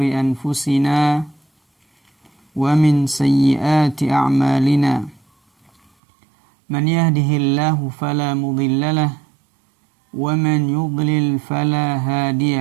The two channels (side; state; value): left; drops out; at 5.9 s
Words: anfusina wa min sayyiati a'malina. Man yahdihillahu fala mudilla lahu wa man yudlil fala